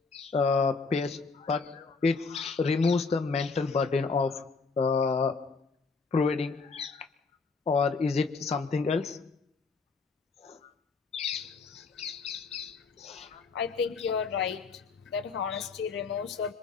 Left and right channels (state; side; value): quieter; right; 4.5 dB